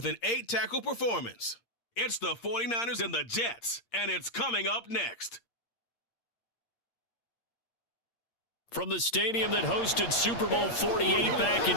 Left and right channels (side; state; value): right; late; 8.6 ms